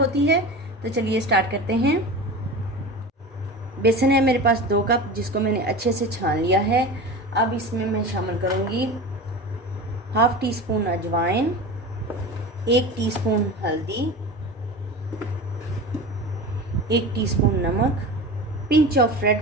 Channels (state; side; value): normal; both; correlation 0.31